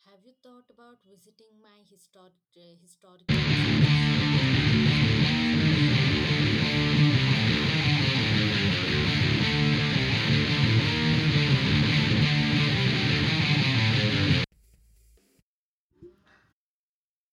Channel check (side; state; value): both; identical; correlation 1.00